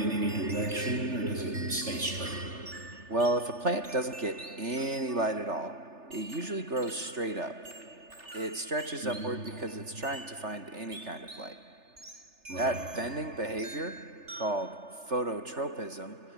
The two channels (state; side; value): late; left; 3.3 ms